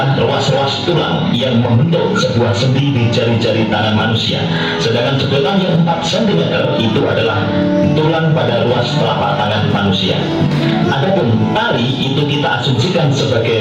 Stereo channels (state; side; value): identical; both; correlation 1.00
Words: ruas-ruas tulang yang membentuk sebuah sendi di jari-jari tangan manusia. Sedangkan sedotan yang 4 cm itu adalah tulang pada ruas telapak tangan manusia. Adapun tali itu kita asumsikan